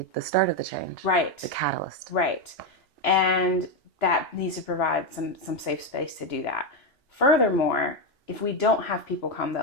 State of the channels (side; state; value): both; normal; correlation 0.08